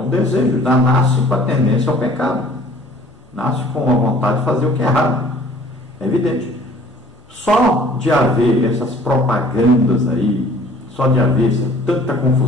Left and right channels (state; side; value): normal; both; correlation 0.52